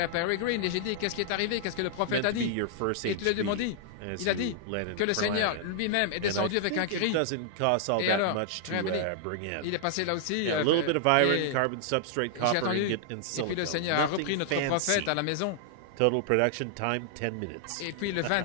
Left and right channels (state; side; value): different; both; correlation -0.01